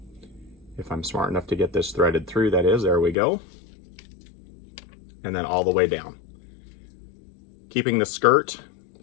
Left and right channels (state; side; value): drops out; right; at 3.2 s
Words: If I'm smart enough to get this threaded through, that is, there we go. And then all the way down. Keeping the skirt